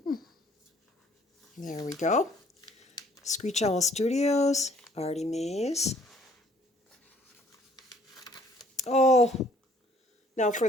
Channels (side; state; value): both; normal; correlation 0.59